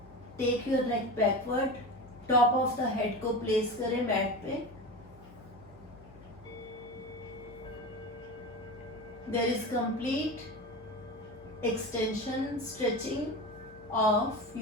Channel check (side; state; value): left; noise; hum, 22 dB below the sound